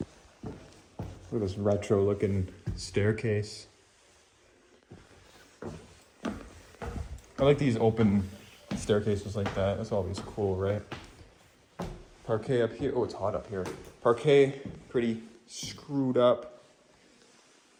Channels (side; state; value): both; identical; correlation 1.00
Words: Look at this retro looking staircase. I like these open staircases like that. That's always cool, right? Parquet up here. Oh, it's hot up here. Parquet, pretty screwed up.